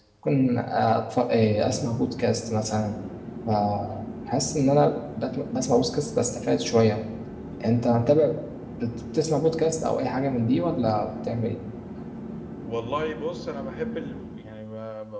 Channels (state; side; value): identical; both; correlation 1.00